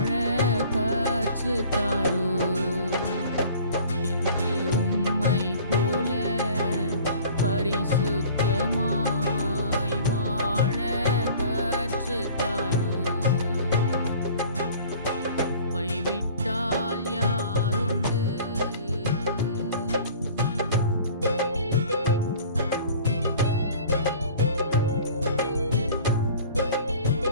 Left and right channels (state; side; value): inverted; both; correlation -0.47